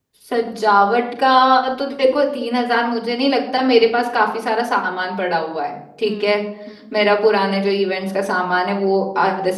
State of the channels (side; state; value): both; identical; correlation 1.00